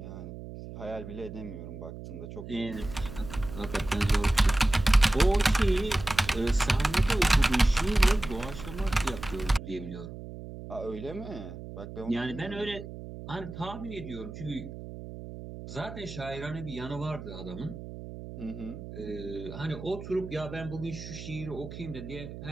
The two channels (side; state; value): right; noise; hum, 11 dB below the sound